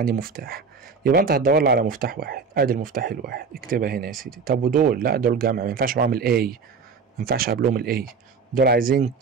مفتاح، يبقى انت هتدور لي على مفتاح واحد. ادي المفتاح الواحد، اكتبها هنا يا سيدي. طب ودول؟ لا دول جمع، ما ينفعش معاهم الاي، ما ينفعش قبلهم الاي. دول عايزين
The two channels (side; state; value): left; quieter; 5.4 dB